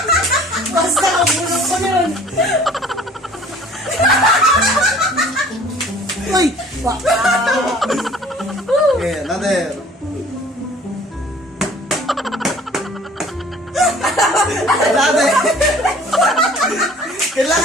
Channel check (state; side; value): normal; both; correlation 0.51